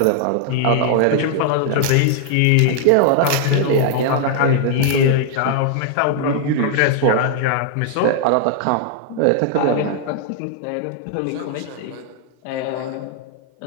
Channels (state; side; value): different; both; correlation 0.00